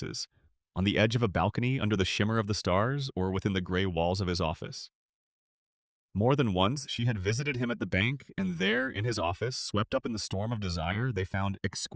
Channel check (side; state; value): both; identical; correlation 1.00